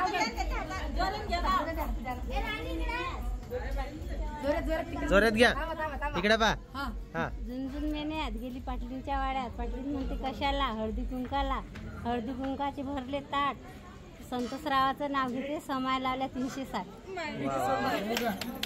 जोरात घ्या. इकडे पा. हा. झुंझुन मेन्यात गेली पाटलींच्या वाड्यात. पाटलीन म्हणते कशाला, हळदी कुंकाला. हळदी कुंकाचे भरले ताट. संतोषरावाचं नाव घेते, समाय लावल्या 360.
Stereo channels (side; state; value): both; identical; correlation 1.00